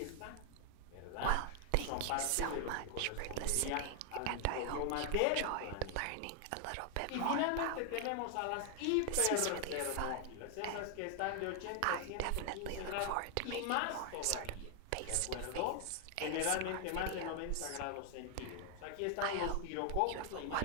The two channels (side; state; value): both; different; correlation 0.00